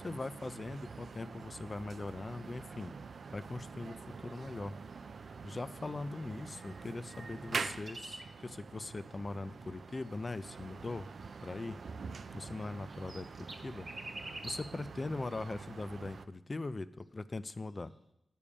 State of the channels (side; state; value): both; normal; correlation 0.93